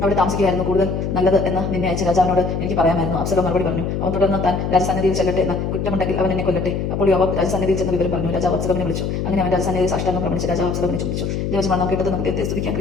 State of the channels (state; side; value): noise; left; hum, 2 dB below the sound